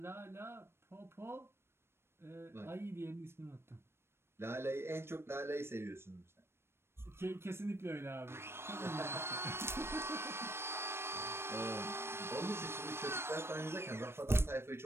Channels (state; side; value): late; left; 0.12 ms